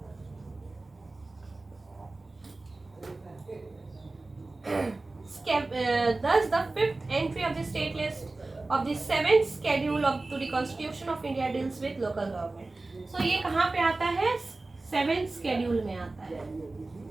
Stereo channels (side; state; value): left; quieter; 3.2 dB